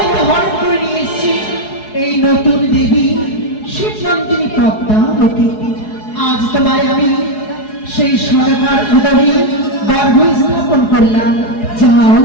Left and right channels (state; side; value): late; right; 4.8 ms